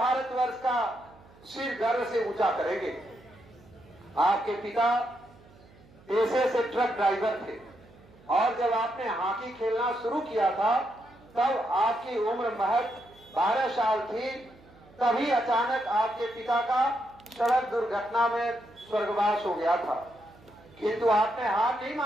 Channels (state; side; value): noise; right; hum, 26 dB below the sound